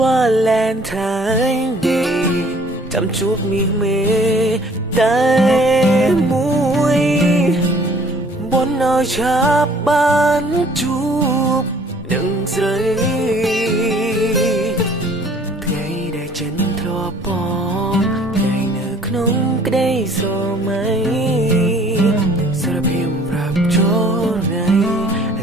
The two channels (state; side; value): normal; both; correlation 0.55